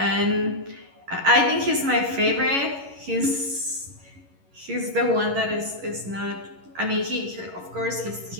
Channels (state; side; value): late; left; 11 ms